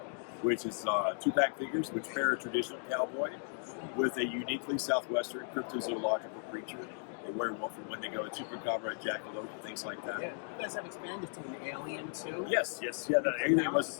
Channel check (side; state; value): right; silent; 54 dB below the other